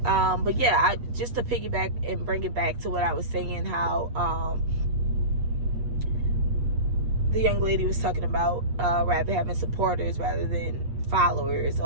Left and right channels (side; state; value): left; late; 8.4 ms